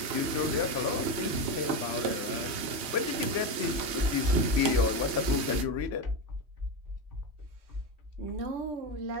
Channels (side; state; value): left; late; 3.1 ms